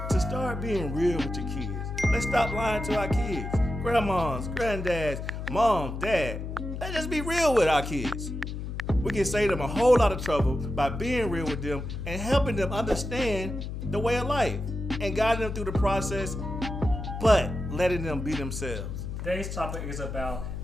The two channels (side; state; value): left; noise; hum, 6 dB below the sound